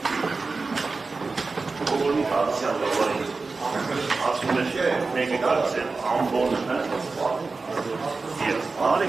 ասում է մեկը կարծել ամբոն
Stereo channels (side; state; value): left; quieter; 4.0 dB